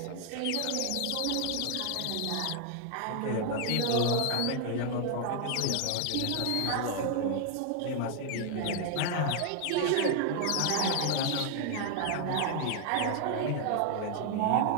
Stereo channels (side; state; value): both; different; correlation 0.00